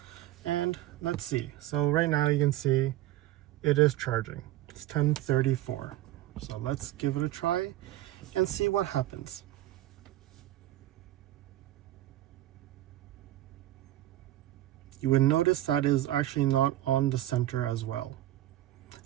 And let's see. So right now you can see it is charging. It's 10:34. So let's give it a try and see what happens. You would notice that it is actually not on the center as well.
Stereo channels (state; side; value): quieter; left; 14.7 dB